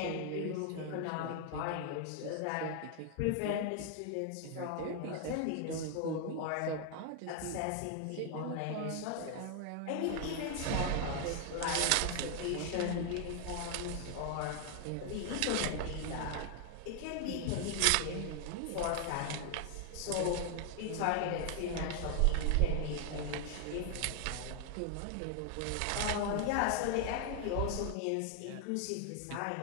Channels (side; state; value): both; different; correlation 0.00